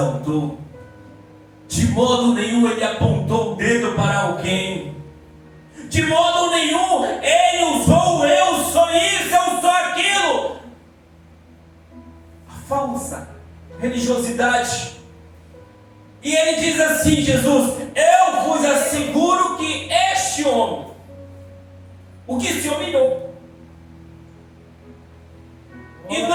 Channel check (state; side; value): identical; both; correlation 1.00